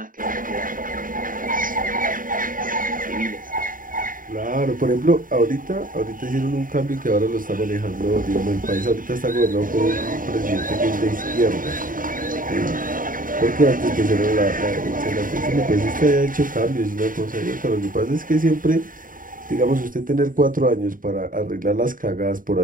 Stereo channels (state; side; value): late; left; 0.40 ms